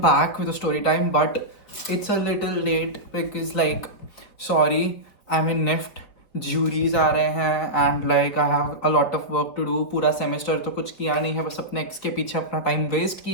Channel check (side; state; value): right; late; 4.9 ms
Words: with a story time, but it's a little late because, sorry, I'm in NIFT. Juries आ रहे हैं and I have a lot of work to do. पूरा semester तो कुछ किया नहीं है, बस अपने ex के पीछे अपना time waste